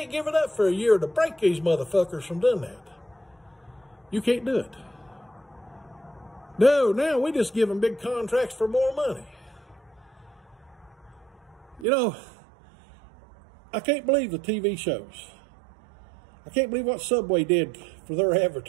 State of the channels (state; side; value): drops out; left; at 11.9 s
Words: give it up for a year to break these motherfuckers from doing that. You can't do it. No, now we just give them big contracts for more money. You know, I can't believe the TV shows. I can't believe what Subway did for their